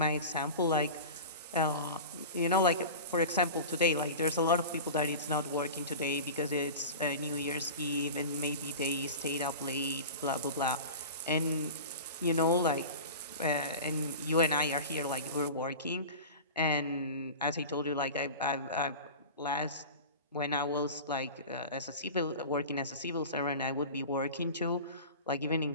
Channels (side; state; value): both; inverted; correlation -0.33